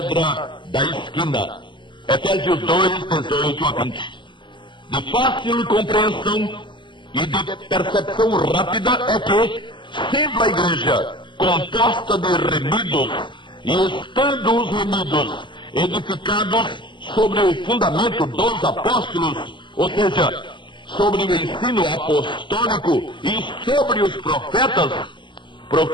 da esquina. Efésios 2, 18 a 20. De fácil compreensão e de percepção rápida é que, sendo a igreja composta de remidos, e estando os remidos edificados sobre o fundamento dos apóstolos, ou seja, sobre o ensino apostólico e sobre os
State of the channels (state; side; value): late; right; 0.23 ms